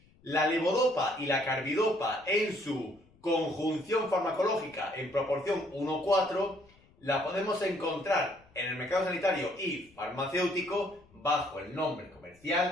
La levodopa y la carbidopa en su conjunción farmacológica en proporción 1:4 la podemos encontrar en el mercado sanitario y farmacéutico bajo el nombre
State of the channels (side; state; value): left; noise; rumble, 29 dB below the sound